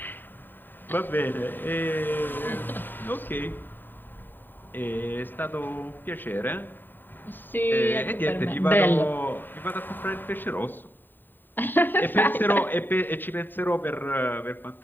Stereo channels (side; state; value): right; late; 0.092 ms